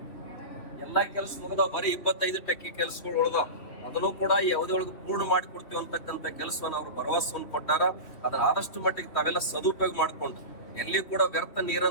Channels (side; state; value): right; late; 3.1 ms